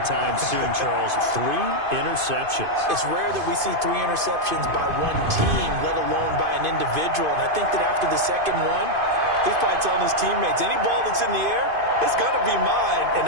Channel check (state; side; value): late; left; 2.5 ms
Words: soon, Charles. 3 interceptions. It's rare that we see 3 interceptions by one team, let alone by an individual. And I think that after the second one, he's probably telling his teammates, any ball that's in the air, it's going to be mine.